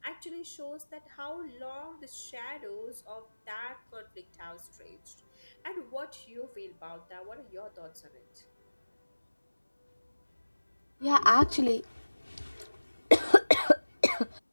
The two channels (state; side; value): inverted; both; correlation -1.00